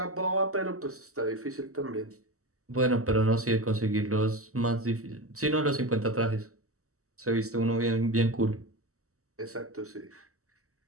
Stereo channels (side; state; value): left; late; 0.65 ms